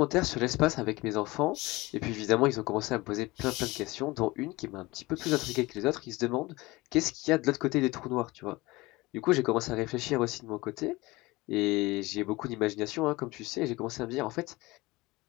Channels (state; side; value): quieter; right; 21.3 dB